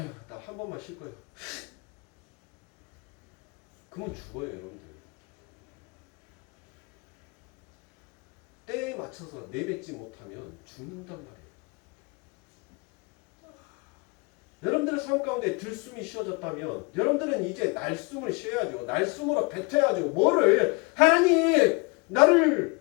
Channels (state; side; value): quieter; right; 28.6 dB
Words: 나 한 번만 쉴 거예요. 그러면 죽어요 여러분들. 때에 맞춰서 내뱉지 못하면 죽는단 말이에요. 여러분들의 삶 가운데 들숨이 쉬어졌다면 여러분들은 이제 날숨을 쉬어야죠. 날숨으로 뱉어야죠. 뭐를? 하나님